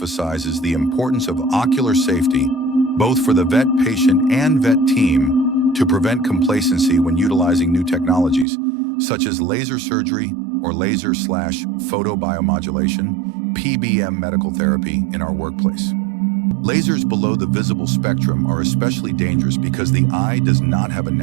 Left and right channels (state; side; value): drops out; left; at 8.5 s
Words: the importance of ocular safety, both for the vet patient and vet team, to prevent complacency when utilizing new technologies, such as laser surgery or laser/photobiomodulation, (PBM) medical therapy in our workplace. Lasers below the visible spectrum are especially dangerous because the eye does not have a